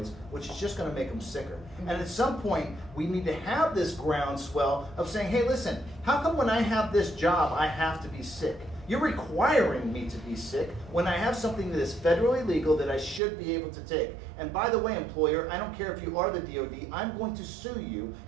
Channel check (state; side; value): drops out; left; at 13.2 s